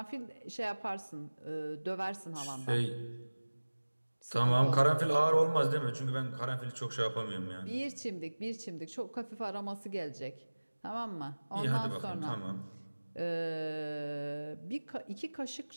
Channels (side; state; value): both; inverted; correlation -1.00